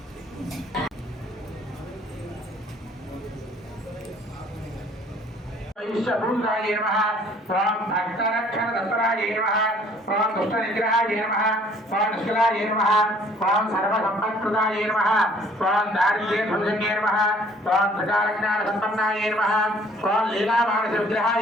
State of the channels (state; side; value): normal; both; correlation 0.57